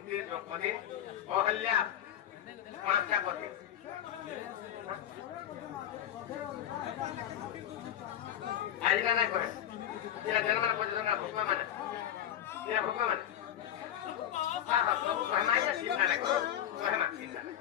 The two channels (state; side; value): quieter; right; 10.9 dB